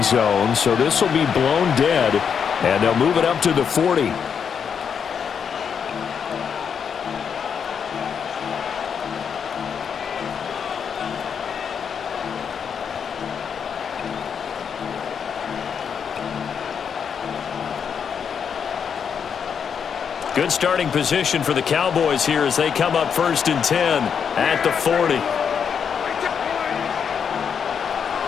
zone, so this will be blown dead, and they'll move it up to the 40. Good starting position for the Cowboys here as they come up 1st and 10 at the 40.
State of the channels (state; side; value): quieter; right; 7.1 dB